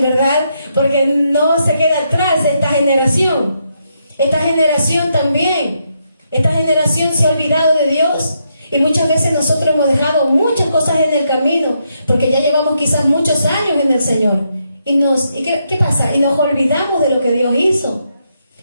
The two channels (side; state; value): both; inverted; correlation -0.79